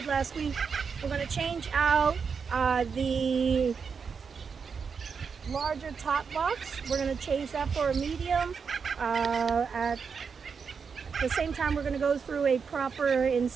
last week, we're going to change out the larger top box. We're going to change that for a medium. At the same time, we're going to go through a proper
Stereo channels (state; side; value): quieter; left; 5.9 dB